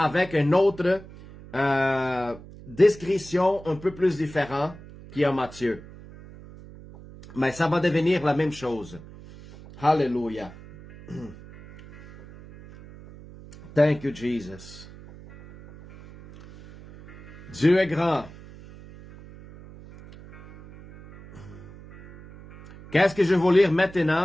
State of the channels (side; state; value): right; noise; hum, 18 dB below the sound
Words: une autre description un peu plus différente qui est en Matthieu. Mais ça va devenir la même chose. Hallelujah. Thank you, Jesus. Dieu est grand. Qu'est-ce que je vais lire